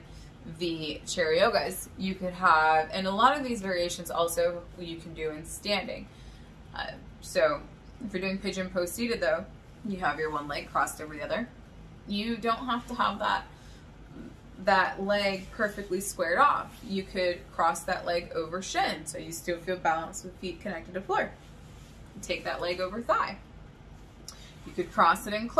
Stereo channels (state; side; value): identical; both; correlation 1.00